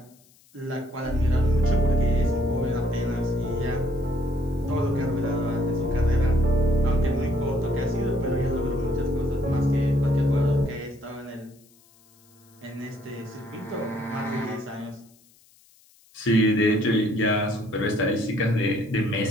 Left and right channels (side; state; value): left; noise; hiss, 30 dB below the sound